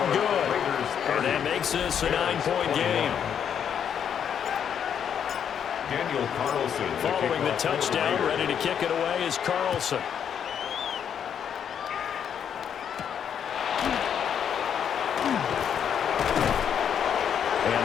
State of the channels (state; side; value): quieter; right; 8.3 dB